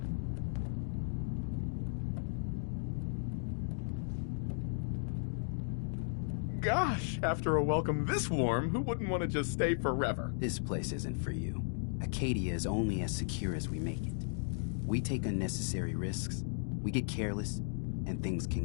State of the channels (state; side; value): silent; right; digital silence